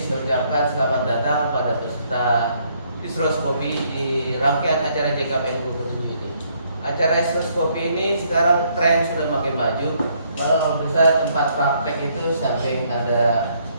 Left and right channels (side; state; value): both; inverted; correlation -0.69